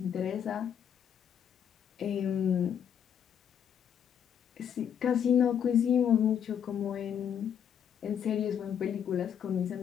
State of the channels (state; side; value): quieter; right; 8.6 dB